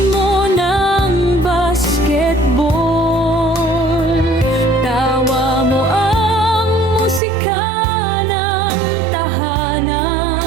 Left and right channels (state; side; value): drops out; left; at 7.2 s